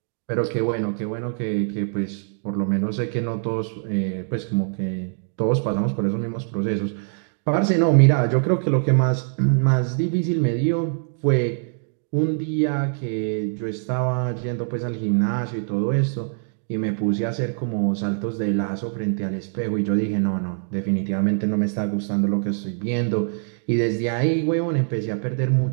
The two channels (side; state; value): left; silent; 63 dB below the other